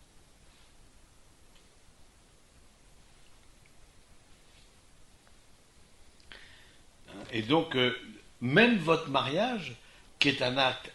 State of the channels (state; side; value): identical; both; correlation 1.00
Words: Et donc, même votre mariage, qui est un acte